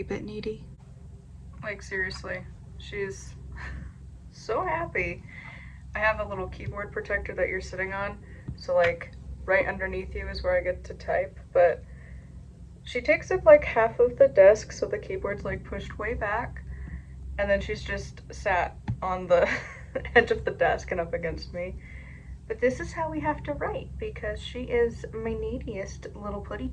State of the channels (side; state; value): both; identical; correlation 1.00